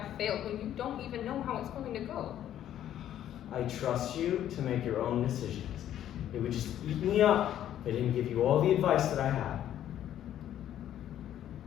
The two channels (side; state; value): right; quieter; 11.3 dB